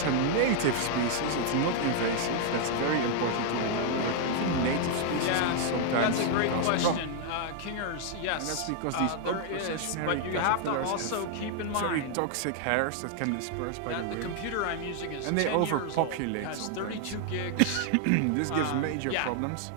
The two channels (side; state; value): both; different; correlation 0.00